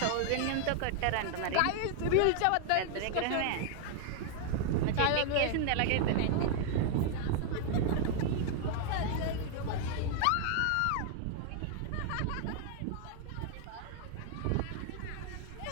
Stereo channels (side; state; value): both; different; correlation 0.00